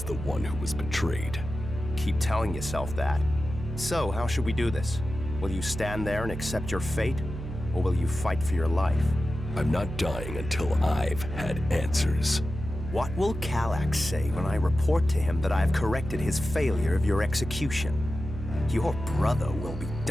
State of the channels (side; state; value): right; noise; hum, 8 dB below the sound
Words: the one who was betrayed. Keep telling yourself that. So, how should we do this? Will you stand there and accept your fate? Or will you fight for your life? I'm not dying until I've had answers. What will Kallax say when I report to him that I've corrected his failure of your execution? Your brother will be